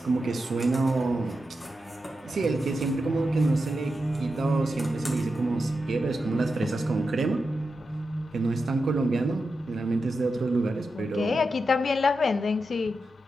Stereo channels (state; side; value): normal; both; correlation 0.89